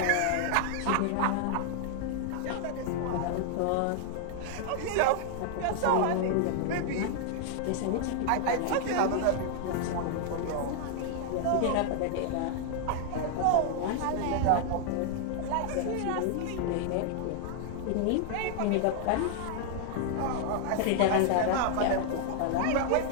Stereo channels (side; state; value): both; different; correlation 0.00